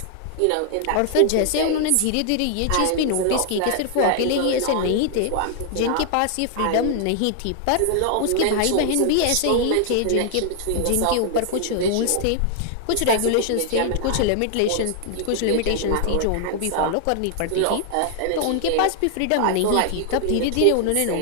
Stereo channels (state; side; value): different; both; correlation 0.00